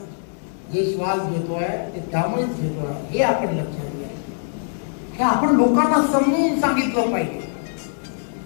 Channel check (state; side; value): silent; right; digital silence